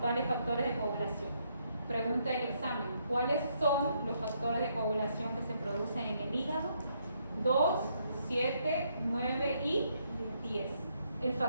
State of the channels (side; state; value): both; inverted; correlation -0.74